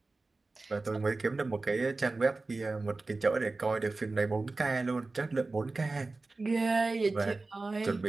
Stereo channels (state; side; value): quieter; left; 3.5 dB